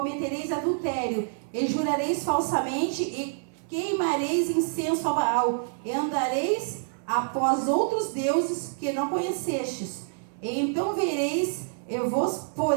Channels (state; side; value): silent; left; 60 dB below the other